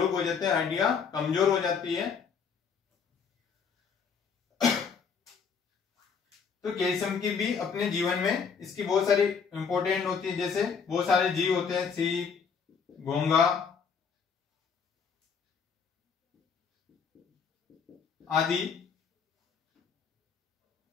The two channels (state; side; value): quieter; right; 6.1 dB